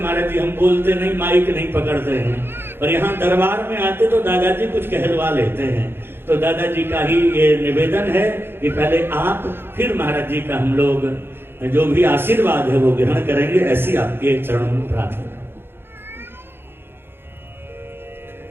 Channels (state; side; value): late; left; 0.11 ms